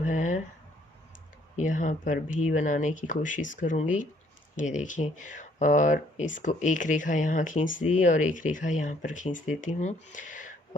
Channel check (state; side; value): normal; both; correlation 0.64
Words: है यहाँ पर भी बनाने की कोशिश करूँगी। ये देखिए, और इसको एक रेखा यहाँ खींच दी और एक रेखा यहाँ पर खींच देती हूँ